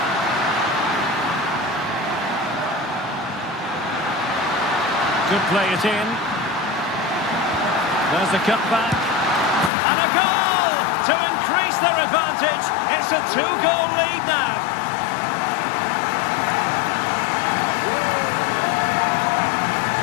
Could play it in. There's the cutback. And a goal to increase their advantage. It's a two-goal lead now.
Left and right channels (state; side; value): drops out; right; at 9.7 s